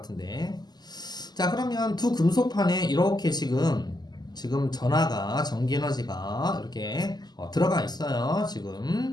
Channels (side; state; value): right; late; 0.20 ms